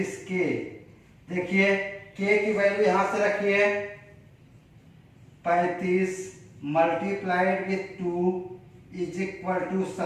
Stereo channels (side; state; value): both; identical; correlation 1.00